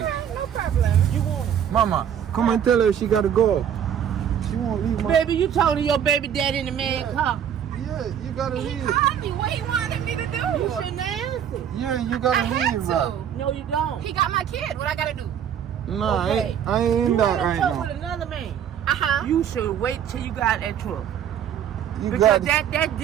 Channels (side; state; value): left; quieter; 9.1 dB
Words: Alright, no problem. You won't. Mama, come and tell her she gotta go. She won't leave, Baby, you talking to your baby daddy in the man car. Yeah, you gotta He leave. called me. What he wanted me to do? You shouldn't answer. Yeah, you gotta I had leave, bro. to. No, you don't. He got my kid. What I gotta do? Nah, Okay. I ain't in You that wanna right talk now. with another man. You You should wait till you got that truck. You Because got that